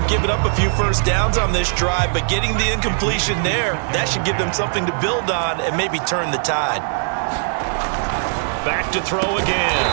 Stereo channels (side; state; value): left; silent; digital silence